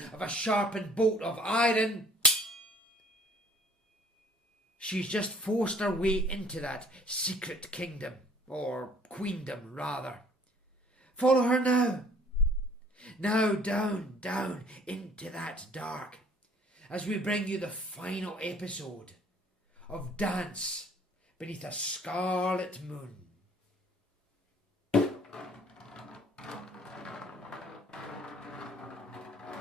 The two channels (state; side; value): normal; both; correlation 0.55